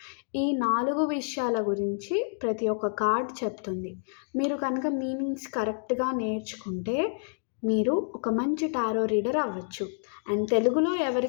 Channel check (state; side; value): silent; right; digital silence